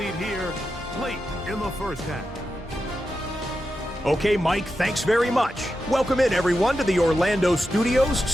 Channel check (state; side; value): noise; left; hum, 20 dB below the sound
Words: here late in the first half. Okay, Mike, thanks very much. Welcome in, everyone, to the Orlando studios.